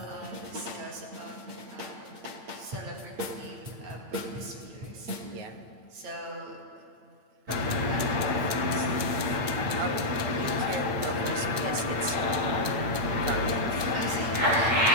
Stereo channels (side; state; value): left; late; 8.9 ms